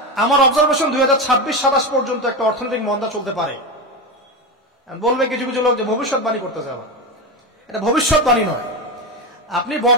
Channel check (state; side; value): normal; both; correlation 0.17